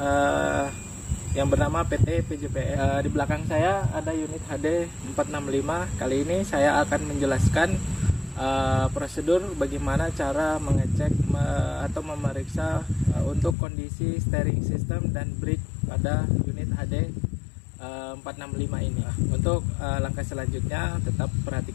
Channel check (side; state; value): right; drops out; at 13.6 s